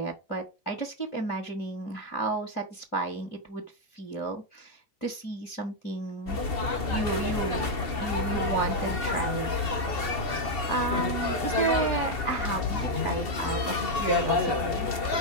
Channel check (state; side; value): late; right; 2.7 ms